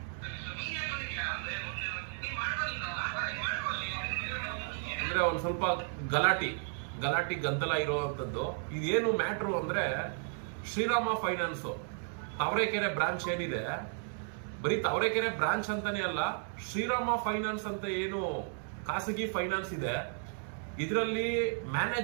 ಅಂದ್ರೆ ಒಂದು ಸ್ವಲ್ಪ ಗಲಾಟಿ ಗದ್ದಲ ಇರುವಂತದ್ದು. ಇದೇನು ಮ್ಯಾಟ್ರು ಅಂದ್ರೆ, ಶ್ರೀರಾಮ ಫೈನಾನ್ಸ್ ತಾವರೆಕೆರೆ ಬ್ರಾಂಚ್ ಏನಿದೆ, ಬರೀ ತಾವರೆಕೆರೆ ಬ್ರಾಂಚ್ ಅಂತಾನೆ ಅಲ್ಲ, ಶ್ರೀರಾಮ ಫೈನಾನ್ಸ್ ಅಂತ ಏನು ಖಾಸಗಿ ಫೈನಾನ್ಸ್ ಇದೆ, ಇದರಲ್ಲಿ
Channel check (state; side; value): silent; left; 55 dB below the other